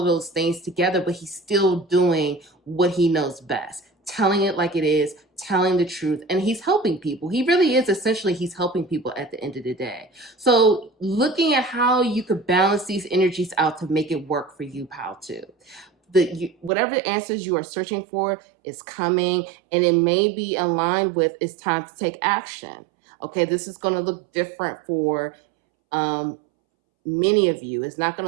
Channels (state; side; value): drops out; left; at 16.7 s